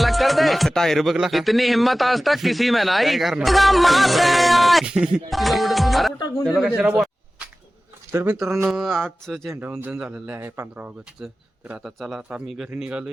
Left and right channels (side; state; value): both; normal; correlation 0.97